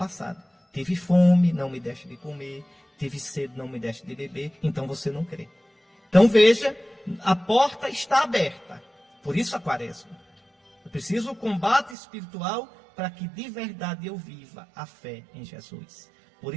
Tive fome, não me deixe de comer. Tive sede, não me deixe de beber. Então você não crê. Então veja, a porta está aberta. Por isso a quaresma. Eu preciso do combate espiritual para que de verdade eu viva a fé em Jesus. Por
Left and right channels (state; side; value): drops out; left; at 12.0 s